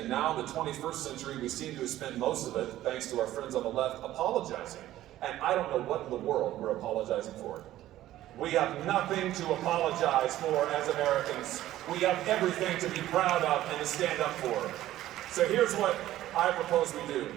now in the 21st century, we seem to have spent most of it, thanks to our friends on the left, apologizing. And I don't know what in the world we're apologizing for. We have nothing to apologize for as Americans. We have everything to be proud of and to stand up for. So here's what I propose we do.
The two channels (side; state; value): left; quieter; 14.1 dB